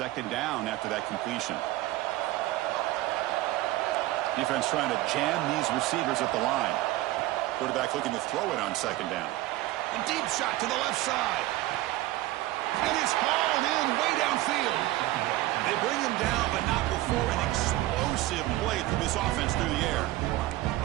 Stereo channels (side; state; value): left; quieter; 17.0 dB